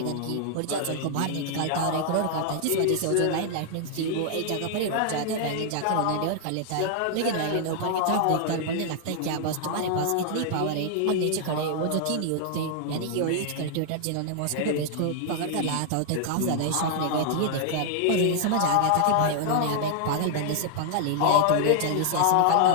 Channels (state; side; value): different; both; correlation 0.00